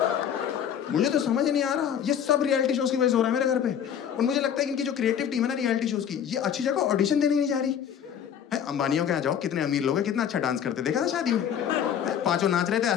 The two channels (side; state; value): right; quieter; 8.8 dB